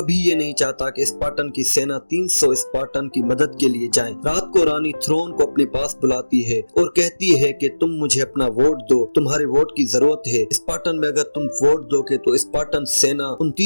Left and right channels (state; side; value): inverted; both; correlation -1.00